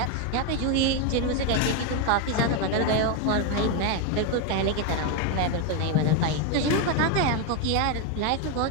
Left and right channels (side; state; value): both; different; correlation 0.02